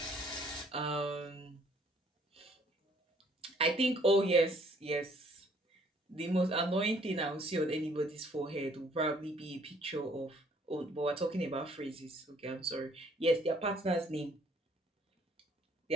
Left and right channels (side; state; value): both; normal; correlation 0.61